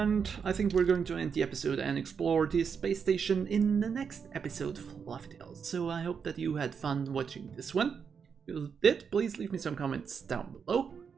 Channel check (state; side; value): quieter; left; 6.5 dB